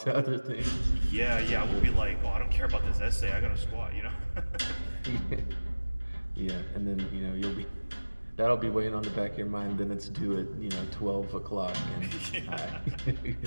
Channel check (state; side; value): inverted; both; correlation -1.00